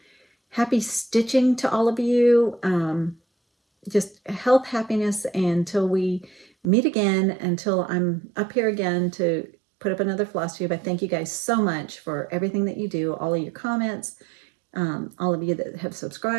Happy stitching to all of you. Just health, happiness, until we meet again, until I'm up here again to put up another FlossTube. I thank you guys so much for everything that you do, all of your comments, All of you that have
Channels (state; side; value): drops out; left; at 6.7 s